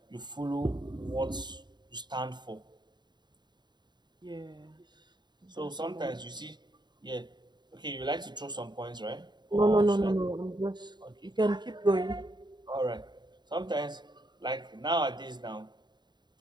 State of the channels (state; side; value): late; left; 0.21 ms